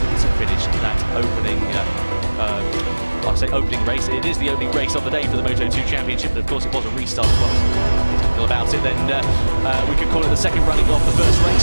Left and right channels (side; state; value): both; inverted; correlation -1.00